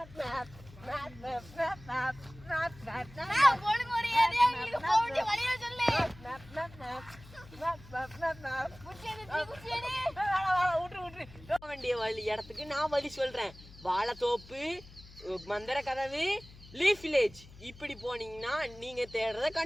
வேண்டிய வழி இடத்துக்கு நான் வழி சொல்றேன். வாழைத்தோப்பு, மந்திர கதவு, லீஃப் வில்லேஜ். இப்படி போனீங்கன்னா நீங்க தேடுறத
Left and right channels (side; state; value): left; noise; hum, 20 dB below the sound